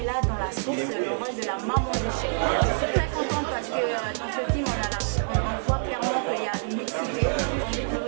dans La Source, le rôle de la maman de Sheikh. Je suis très contente parce que dans ce film, on voit clairement qu'il y a une mixité. Au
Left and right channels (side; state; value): left; silent; digital silence